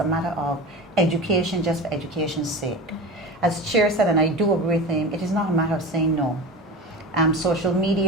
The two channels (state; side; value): normal; both; correlation 0.29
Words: matter of education just for education's sake. As Chair said, and I do agree with him, it is not a matter of saying no. Social